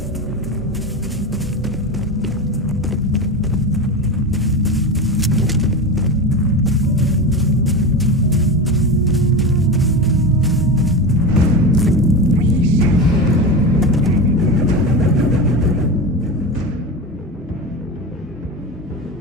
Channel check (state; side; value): normal; both; correlation 0.22